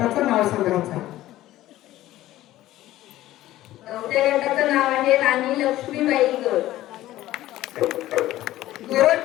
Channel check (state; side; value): quieter; right; 15.1 dB